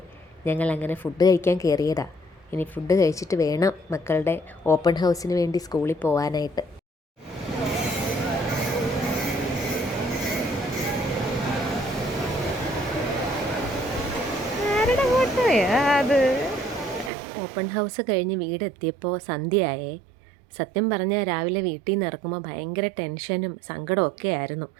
ഞങ്ങൾ അങ്ങനെ ഫുഡ് കഴിക്കാൻ കയറിയതാ. ഇനി ഫുഡ് കഴിച്ചിട്ട് വേണം മക്കളുടെ ഓപ്പൺ ഹൗസിന് വേണ്ടി സ്കൂളിൽ പോകാനായിട്ട്. ആരുടെ ഫോട്ടോയാ അത്? ഓപ്പൺ ഹൗസ് കഴിഞ്ഞ് വീടെത്തിയപ്പോൾ സന്ധ്യയായേ. സത്യം പറഞ്ഞാൽ രാവിലെ വീട്ടിൽ നിന്ന് ഇറക്കുമ്പോൾ ഭയങ്കര ടെൻഷനും സങ്കടവും ഒക്കെ ആയിരുന്നു.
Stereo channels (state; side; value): drops out; left; at 17.1 s